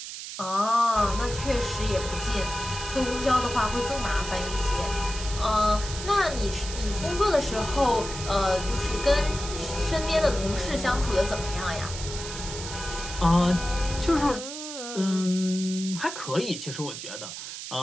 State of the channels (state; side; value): noise; right; hiss, 9 dB below the sound